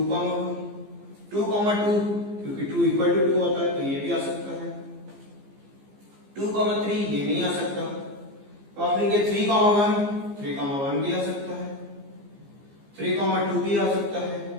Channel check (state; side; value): late; left; 15 ms